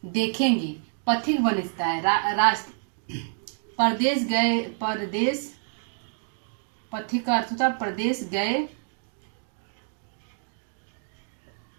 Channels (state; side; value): silent; left; 60 dB below the other